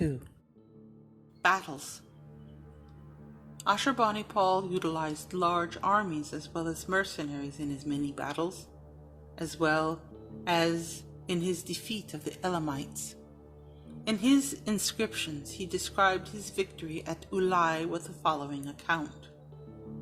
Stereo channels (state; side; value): identical; both; correlation 1.00